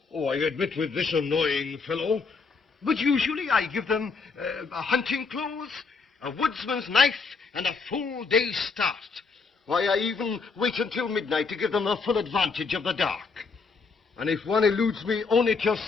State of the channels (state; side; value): quieter; right; 4.7 dB